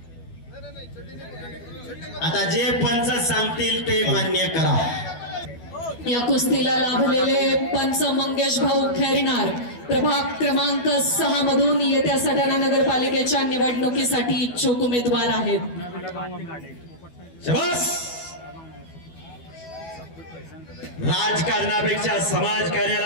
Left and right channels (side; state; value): right; late; 12 ms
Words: आता जे पंच सांगतील ते मान्य करा. या कुस्तीला लाभलेले पंच मंगेश भाऊ खैरनार प्रभाग क्रमांक 6 मधून येत्या सटाणा नगरपालिकेच्या निवडणुकीसाठी इच्छुक उमेदवार आहेत. शाबास. राजकारणापेक्षा